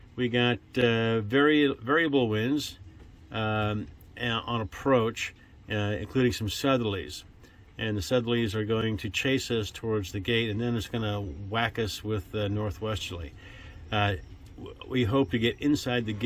We got variable winds on approach, including some southerlies. And the southerlies are going to chase us towards the gate, and then it's going to whack us with northwesterly. We hope to get inside the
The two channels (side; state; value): both; identical; correlation 1.00